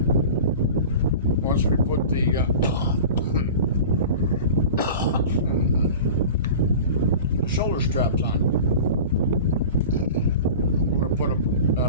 we put the shoulder straps on. I'm going to put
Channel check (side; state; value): both; inverted; correlation -0.36